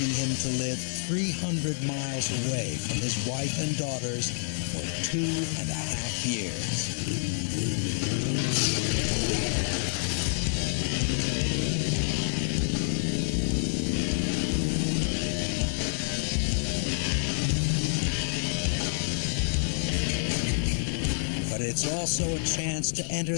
him to live 300 miles away from his wife and daughters for 2.5 years. But it's also a chance to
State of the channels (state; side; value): silent; right; 59 dB below the other